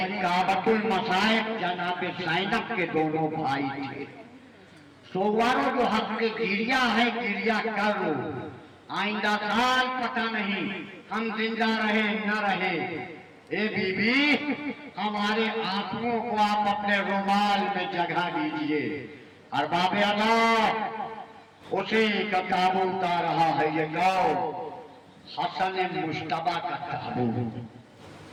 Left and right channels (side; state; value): both; identical; correlation 1.00